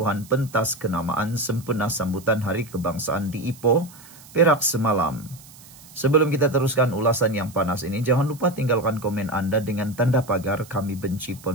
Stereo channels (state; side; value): noise; right; hiss, 21 dB below the sound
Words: pentas kenamaan sempena sambutan Hari Kebangsaan di Ipoh, Perak semalam. Sebelum kita teruskan ulasan yang panas ini, jangan lupa tinggalkan komen Anda dengan tanda pagar kami benci